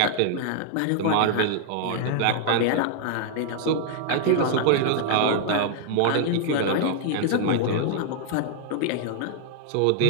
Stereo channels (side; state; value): both; different; correlation 0.00